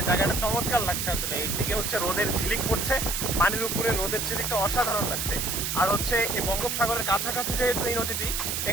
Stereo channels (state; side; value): noise; right; hiss, 1 dB below the sound